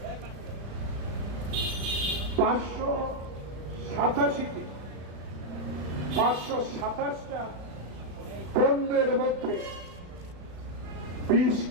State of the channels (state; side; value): late; left; 35 ms